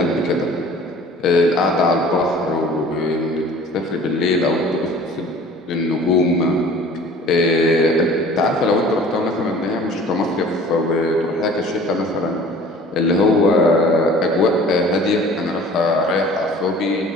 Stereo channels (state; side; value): normal; both; correlation 0.47